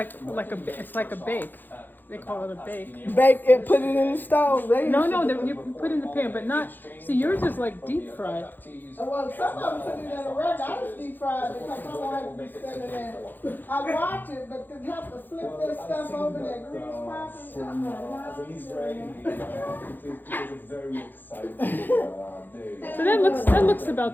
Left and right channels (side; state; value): right; late; 0.089 ms